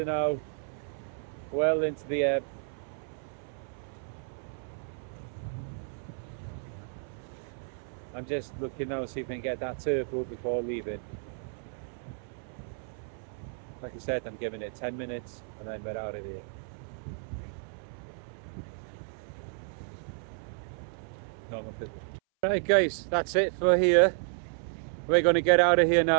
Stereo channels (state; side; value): silent; left; 56 dB below the other